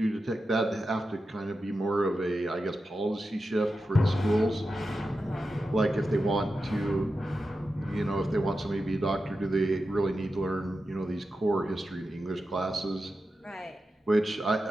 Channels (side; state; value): both; normal; correlation 0.91